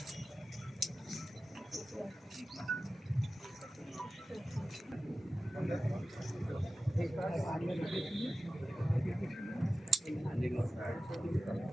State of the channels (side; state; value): both; normal; correlation 0.94